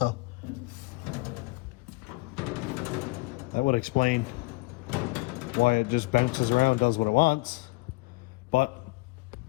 That would explain why it just bounces around, does what it wants, but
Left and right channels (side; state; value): right; quieter; 24.3 dB